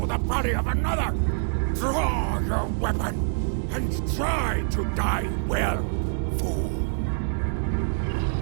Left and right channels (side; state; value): left; silent; digital silence